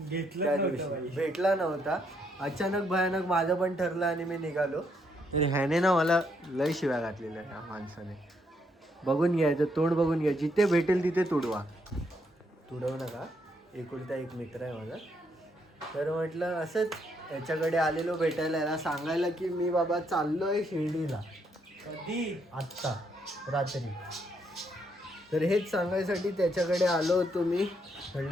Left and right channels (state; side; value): normal; both; correlation 0.74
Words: भेटला नव्हता अचानक भयानक माझं पण ठरलं आणि मी निघालो. तर ह्याने ना मला लय शिव्या घातलेल्या ह्या माणसाने. बघून घ्यायचं, तोंड बघून घ्या. जिथे भेटेल तिथे तुडवा. तुडवू नका, एकुलता एक मित्र आहे माझा. तर म्हटलं असंच याच्याकडे आलेलो भेटायला, याला सांगायला की मी बाबा चाललोय शिर्डीला. कधी? आत्ता रात्री. तर हेच सांगायसाठी त्याच्याकडे आलो होतो मी.